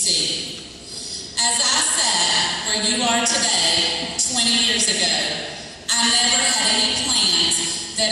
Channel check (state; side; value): identical; both; correlation 1.00